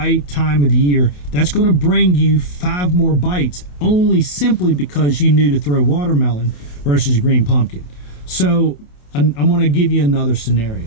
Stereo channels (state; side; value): late; right; 28 ms